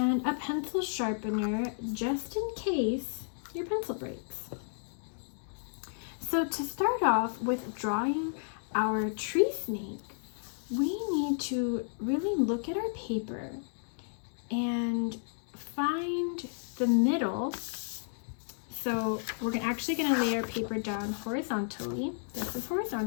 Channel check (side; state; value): right; silent; digital silence